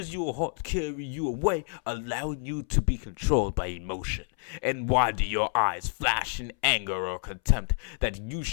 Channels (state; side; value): silent; right; 59 dB below the other